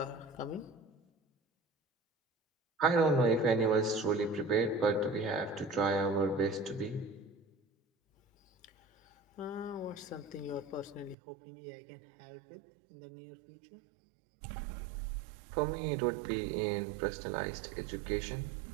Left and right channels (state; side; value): drops out; left; at 11.2 s